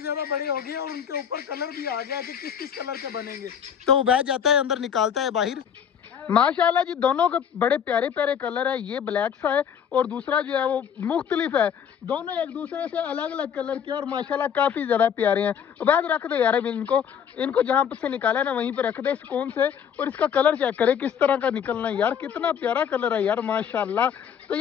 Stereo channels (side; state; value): right; quieter; 8.1 dB